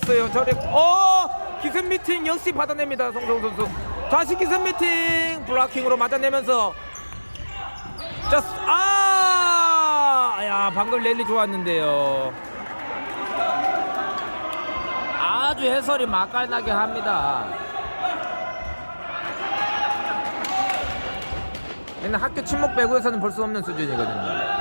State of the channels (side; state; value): both; inverted; correlation -1.00